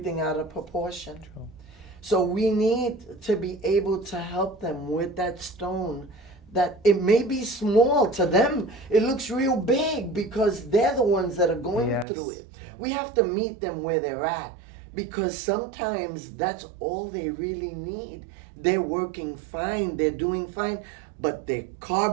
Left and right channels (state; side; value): drops out; left; at 12.1 s